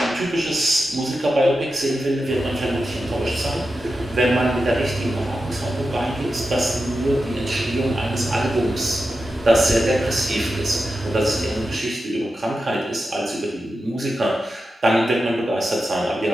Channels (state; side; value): normal; both; correlation 0.91